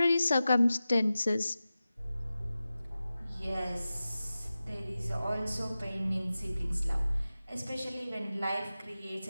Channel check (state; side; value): inverted; both; correlation -0.95